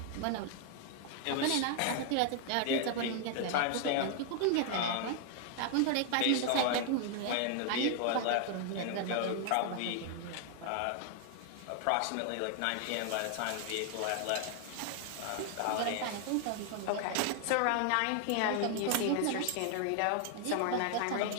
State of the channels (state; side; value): different; both; correlation 0.00